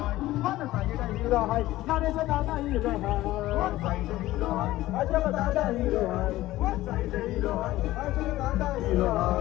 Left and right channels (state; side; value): quieter; right; 16.4 dB